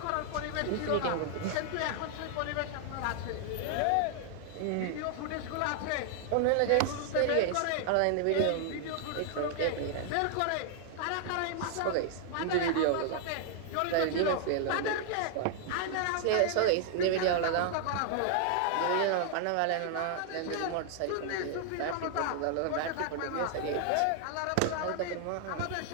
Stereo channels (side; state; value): both; different; correlation 0.00